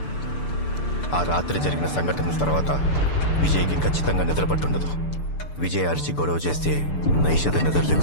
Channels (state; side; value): late; right; 6.8 ms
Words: ఆ రాత్రి జరిగిన సంఘటనల తర్వాత విజయ్కి ఖచ్చితంగా నిద్రపట్టుండదు. విజయ్ అరిచి గొడవ చేస్తే నైషద నిద్ర